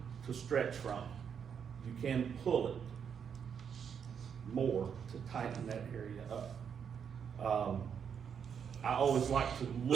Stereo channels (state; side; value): quieter; left; 7.4 dB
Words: to stretch from. You can pull it more to tighten that area up. I always like to